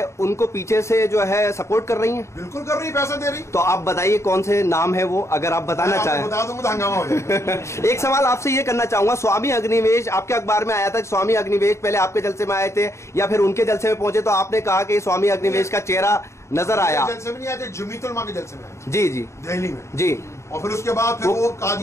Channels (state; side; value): late; right; 0.14 ms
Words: उनको पीछे से जो है सपोर्ट कर रही हैं? बिल्कुल कर रही, पैसा दे रही। तो आप बताइए कौन से नाम है वो, अगर आप बताना चाहें। बता दूंगा तो हंगामा हो जाएगा। एक सवाल आपसे ये करना चाहूंगा, स्वामी अग्निवेश आपके अखबार में आया था कि स्वामी अग्निवेश पहले आपके जलसे में आए थे या फिर उनके जलसे में पहुंचे, तो आपने कहा कि स्वामी अग्निवेश का चेहरा नजर आया। जलसे में नहीं आए थे, जमीयतुल उलमा के जलसे में आए। जी जी, दिल्ली में जी। और फिर उसके बाद फिर वो